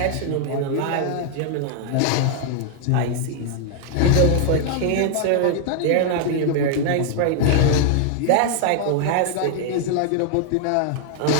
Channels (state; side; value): different; both; correlation 0.00